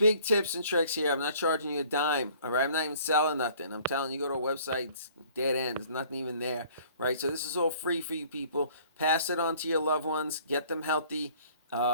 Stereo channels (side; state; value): both; inverted; correlation -0.55